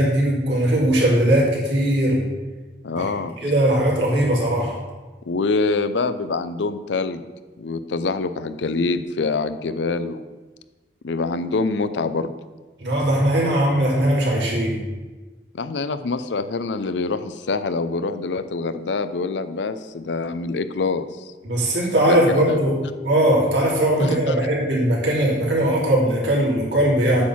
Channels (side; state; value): both; normal; correlation 0.38